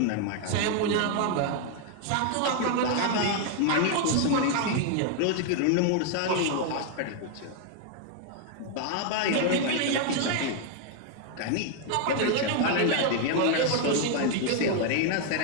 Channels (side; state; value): both; different; correlation 0.00